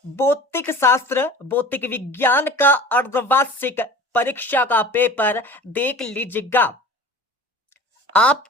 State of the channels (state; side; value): normal; both; correlation 0.40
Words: भौतिक शास्त्र, भौतिक विज्ञान का अर्धवार्षिक परीक्षा का पेपर देख लीजिएगा।